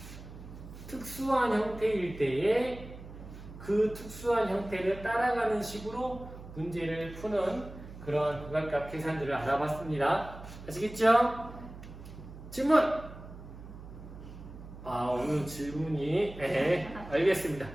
특수한 형태일 때에 그 특수한 형태를 따라가는 식으로 문제를 푸는 그런 극한값 계산들을 알아봤습니다. 아시겠죠? 질문! 오늘 질문이 알겠습니다.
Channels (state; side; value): noise; right; hum, 14 dB below the sound